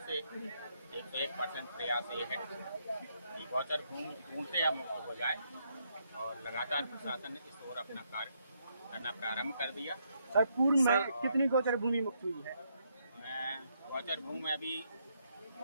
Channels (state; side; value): inverted; both; correlation -0.76